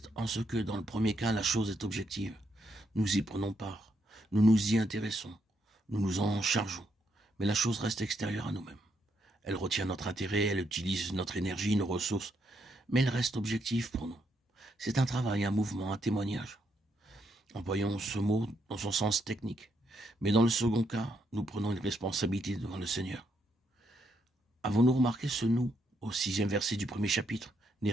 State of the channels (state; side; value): normal; both; correlation 0.77